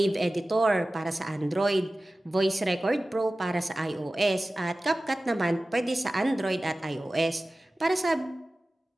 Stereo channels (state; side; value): normal; both; correlation 0.96